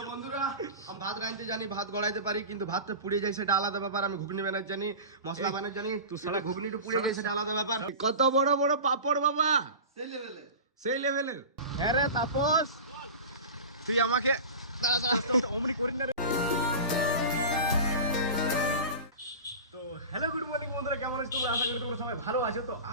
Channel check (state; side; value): inverted; both; correlation -0.31